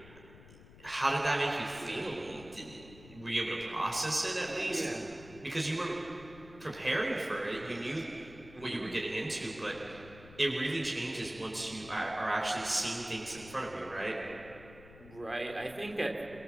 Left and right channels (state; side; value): noise; left; rumble, 18 dB below the sound